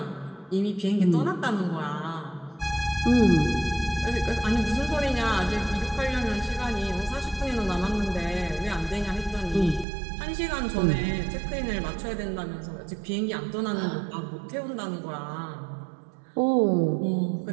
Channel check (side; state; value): left; drops out; at 9.9 s